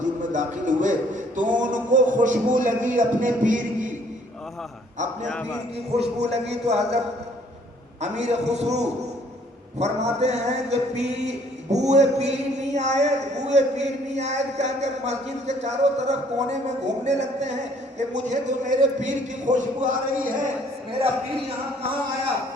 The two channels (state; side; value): normal; both; correlation 0.61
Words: میں داخل ہوئے تو ان کو خوشبو لگی اپنے پیر کی، اپنے پیر کی خوشبو لگی. تو حضرت امیر خسرو فرماتے ہیں کہ بوئے پیر نہیں آئے، بوئے پیر نہیں آئے کہہ کر مسجد کے چاروں طرف کونے میں گھومنے لگتے ہیں کہ مجھے تو میرے پیر کی خوشبو آ رہی ہے. میرا پیر یہاں کہاں آیا؟